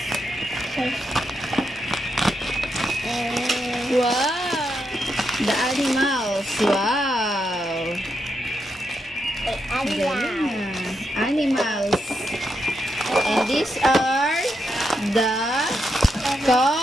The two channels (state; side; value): normal; both; correlation 0.83